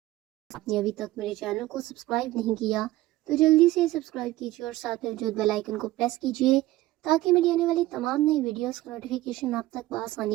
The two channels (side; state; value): left; quieter; 16.9 dB